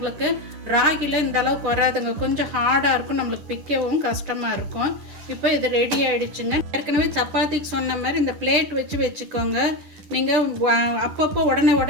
ராகியில் இந்த அளவுக்கு வராதுங்க. கொஞ்சம் ஹார்டாக இருக்கும், நம்மளுக்கு பிக்கவும் கஷ்டமாக இருக்கும். இப்போ இது ரெடி ஆகிடுச்சுங்க. ஏற்கனவே சப்பாத்திக்கு சொன்ன மாதிரி இந்த பிளேட் வச்சுக்கோங்க. நீங்கள் அப்பப்போ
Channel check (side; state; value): left; late; 10 ms